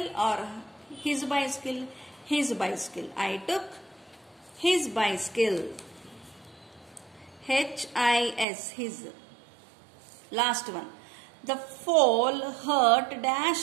or his bicycle? His bicycle. I took his bicycle. H-I-S, his. Last one. The fall hurt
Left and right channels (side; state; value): left; drops out; at 8.5 s